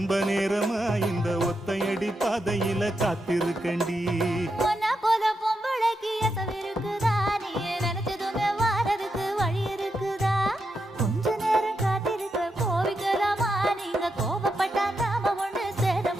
நேரமா இந்த ஒத்தையடி பாதையில காத்திருக்கண்டி. உன்னை போல பொம்பளைக்கு எசவு இருக்குதா, நீ நினைச்சதுமே வாரதுக்கு வழி இருக்குதா? கொஞ்ச நேரம் காத்திருக்க கோவிக்கலாமா, நீங்க கோபப்பட்டா நாம ஒண்ணு சேர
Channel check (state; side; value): normal; both; correlation 0.85